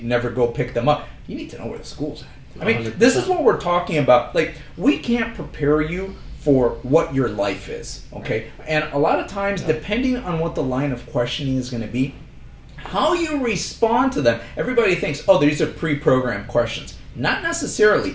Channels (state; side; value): identical; both; correlation 1.00